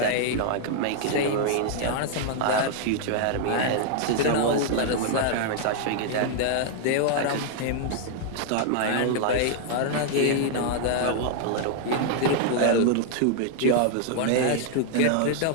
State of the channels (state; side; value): different; both; correlation 0.00